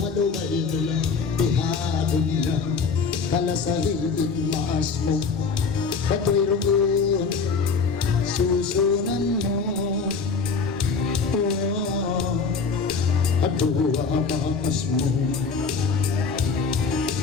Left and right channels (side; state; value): right; quieter; 5.0 dB